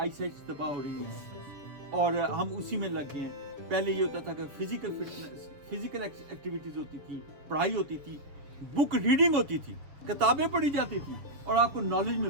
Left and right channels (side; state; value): left; late; 7.0 ms